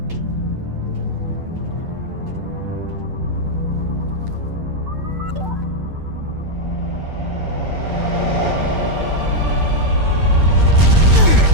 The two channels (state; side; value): late; left; 9.1 ms